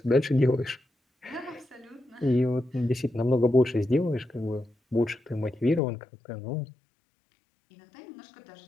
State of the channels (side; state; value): right; drops out; at 5.8 s